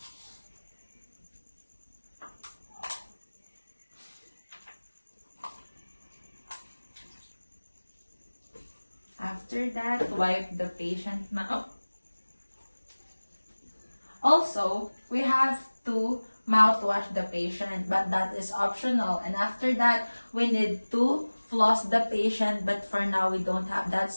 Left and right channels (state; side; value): inverted; both; correlation -1.00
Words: After that, wipe the patient's mouth. Also, we have to mouthwash the patient, but that is optional. And after that, we need to floss the patient, but for now, we don't have that,